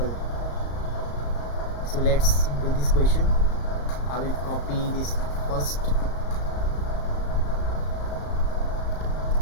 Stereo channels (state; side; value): late; right; 34 ms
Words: So let's do this question. I will copy this first